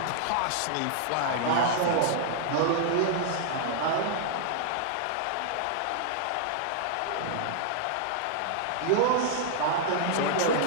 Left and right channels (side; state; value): both; different; correlation -0.01